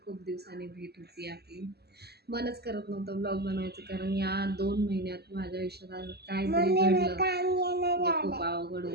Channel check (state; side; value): late; left; 0.47 ms